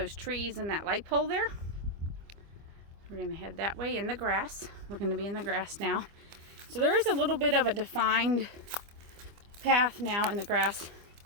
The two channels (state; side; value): late; left; 25 ms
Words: trees and that light pole there. We're gonna head that way in the grass. We're gonna be in the grass now. So there is a little bit of a defined path now in the grass.